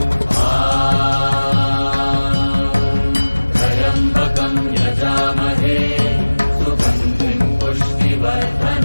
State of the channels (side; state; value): both; inverted; correlation -1.00